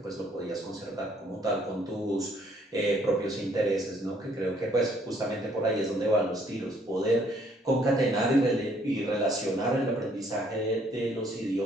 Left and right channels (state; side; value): normal; both; correlation 0.65